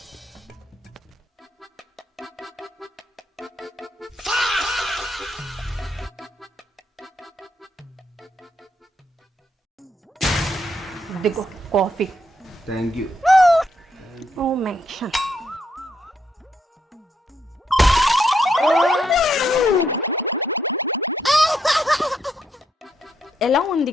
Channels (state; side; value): normal; both; correlation 0.77